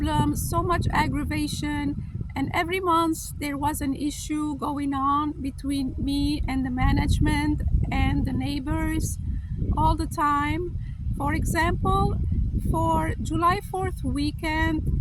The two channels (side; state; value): both; identical; correlation 1.00